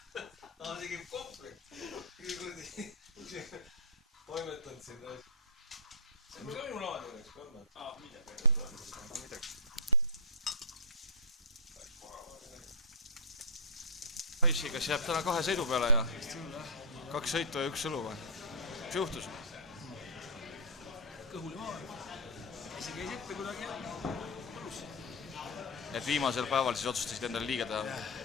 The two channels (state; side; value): normal; both; correlation -0.11